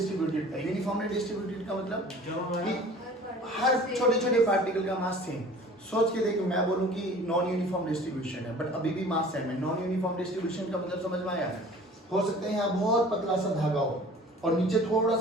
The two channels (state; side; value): normal; both; correlation 0.46